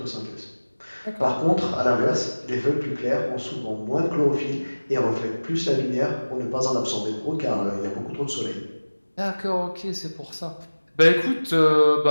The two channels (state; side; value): inverted; both; correlation -1.00